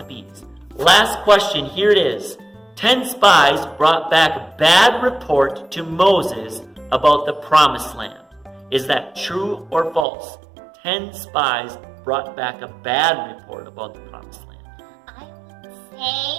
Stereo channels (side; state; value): left; drops out; at 10.1 s